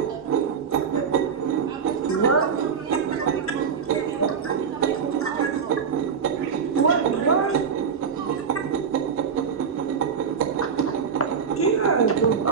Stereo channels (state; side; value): quieter; left; 6.5 dB